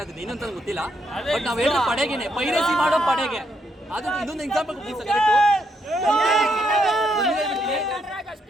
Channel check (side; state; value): both; normal; correlation 0.76